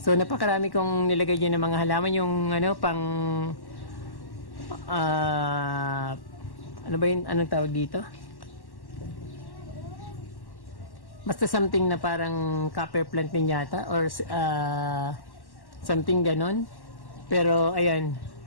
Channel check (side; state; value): right; late; 1.1 ms